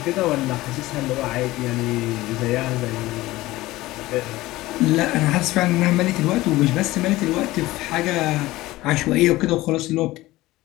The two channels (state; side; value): quieter; right; 18.1 dB